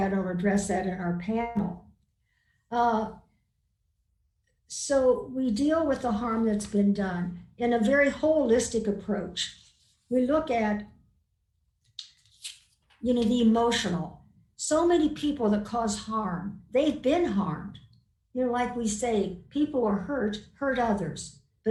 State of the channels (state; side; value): identical; both; correlation 1.00